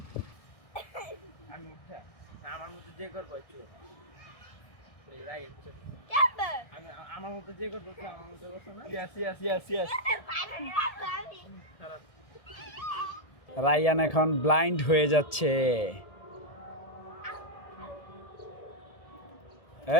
আমি উঠা না আমার মতো যে করবো চোর ওই রাইট চোর কেমবে আমি আমার মতো যে করবো আমার মতো করছো না yes yes yes yes finally রাখবো আমি খারাপ রায়ান এখন ব্লাইন্ড হয়ে যাচ্ছে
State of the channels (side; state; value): right; late; 1.7 ms